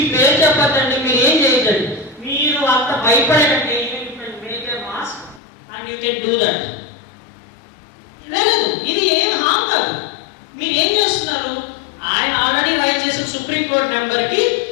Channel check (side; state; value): right; drops out; at 5.4 s